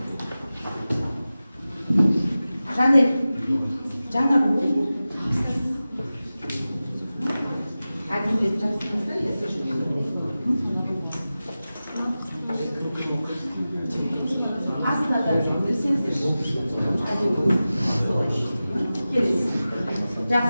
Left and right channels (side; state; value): both; inverted; correlation -0.95